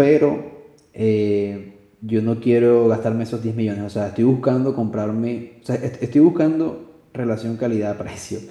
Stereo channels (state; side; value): identical; both; correlation 1.00